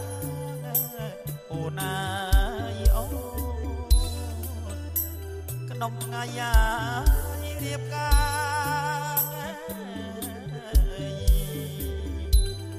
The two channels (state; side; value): identical; both; correlation 1.00